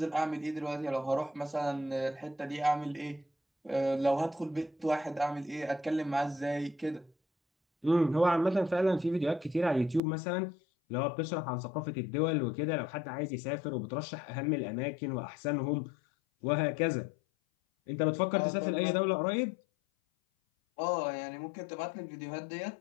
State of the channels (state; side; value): drops out; right; at 10.0 s